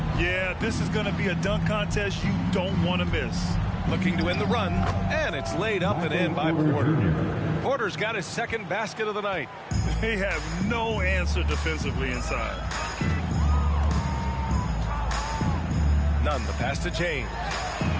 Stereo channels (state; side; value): identical; both; correlation 1.00